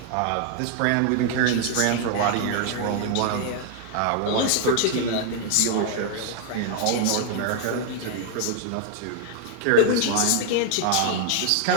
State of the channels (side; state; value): both; different; correlation 0.00